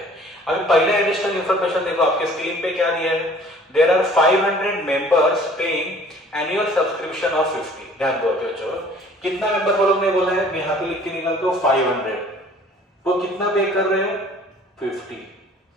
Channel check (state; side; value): normal; both; correlation 0.52